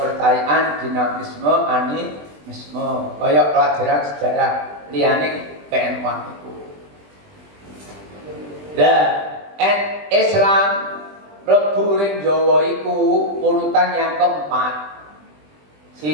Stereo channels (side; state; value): left; late; 20 ms